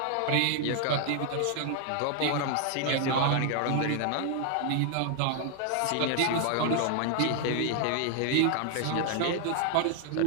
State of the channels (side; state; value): both; different; correlation 0.00